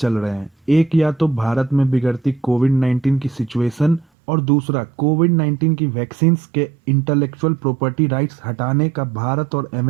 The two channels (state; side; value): drops out; left; at 4.0 s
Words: रहे हैं। एक या तो भारत में बिगड़ती कोविड-19 की सिचुएशन और दूसरा कोविड-19 की वैक्सीन्स के इंटेलेक्चुअल प्रॉपर्टी राइट्स हटाने का भारत और